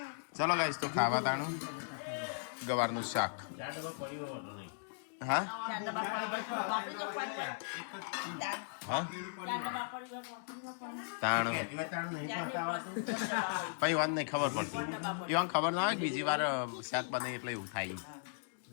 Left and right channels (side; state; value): right; silent; digital silence